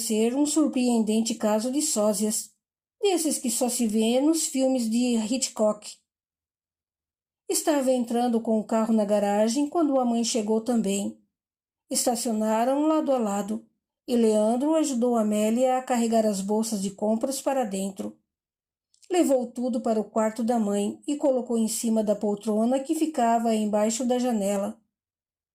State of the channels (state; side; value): identical; both; correlation 1.00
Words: um surpreendente caso de sósias, desses que só se vê nos filmes de Hitchcock. Estava entrando com o carro na garagem quando a mãe chegou também. Estacionaram lado a lado, e Leandro ajudou Amélia a carregar as bolsas de compras para dentro. Levou tudo para o quarto da mãe e colocou em cima da poltrona que ficava embaixo da janela.